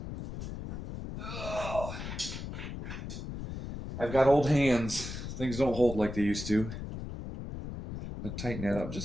Ugh. I've got old hands. Things don't hold like they used to. I'm going to tighten that up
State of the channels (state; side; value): noise; left; rumble, 7 dB below the sound